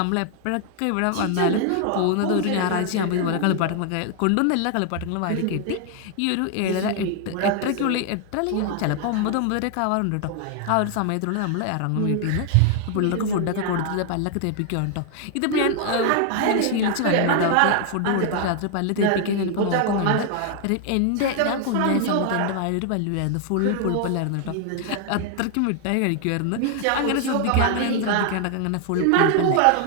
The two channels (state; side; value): different; both; correlation 0.00